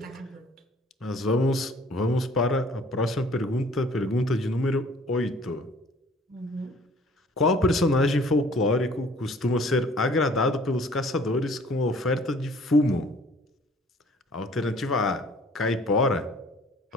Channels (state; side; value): normal; both; correlation 0.54